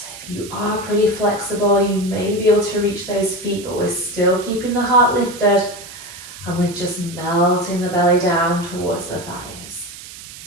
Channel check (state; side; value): noise; right; hiss, 15 dB below the sound